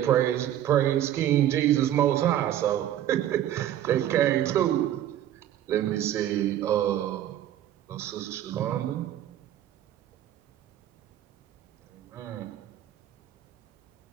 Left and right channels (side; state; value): left; quieter; 11.9 dB